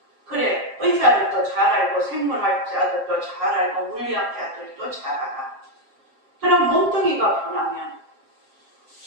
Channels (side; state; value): left; late; 7.4 ms